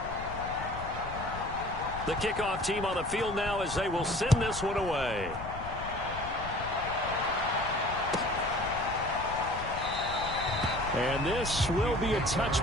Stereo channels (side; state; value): left; noise; rumble, 11 dB below the sound